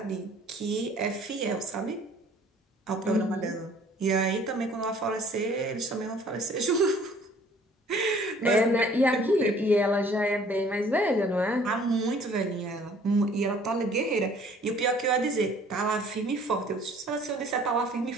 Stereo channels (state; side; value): normal; both; correlation 0.55